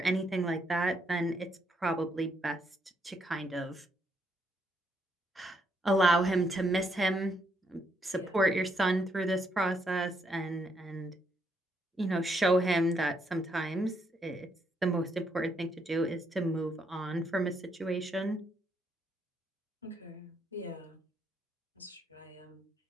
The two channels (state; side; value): normal; both; correlation 0.75